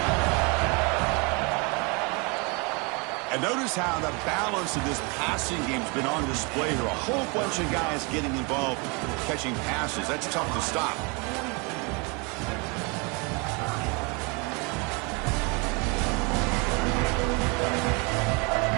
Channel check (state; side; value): quieter; left; 30.7 dB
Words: And notice how the balance of this passing game's been on display here. A whole bunch of guys getting involved catching passes. That's tough to stop.